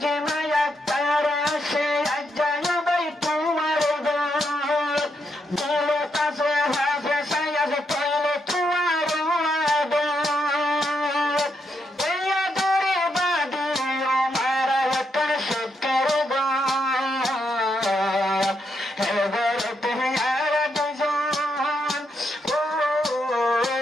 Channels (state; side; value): normal; both; correlation 0.80